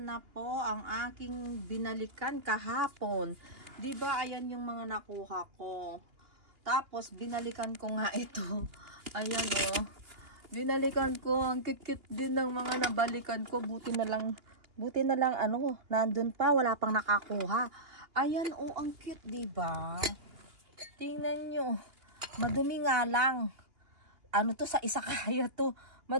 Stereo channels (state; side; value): late; left; 2.8 ms